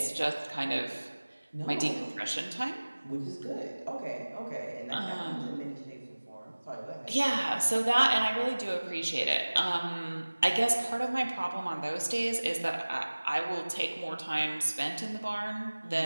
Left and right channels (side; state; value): both; inverted; correlation -1.00